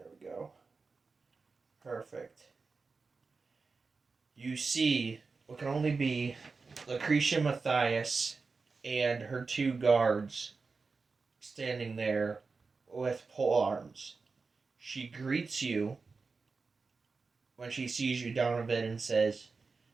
we go. Perfect. You see what can only be Lucretia Matthias and her two guards standing there with pole arms. She greets you when she sees you, Donovan, and says,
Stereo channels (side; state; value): left; quieter; 4.4 dB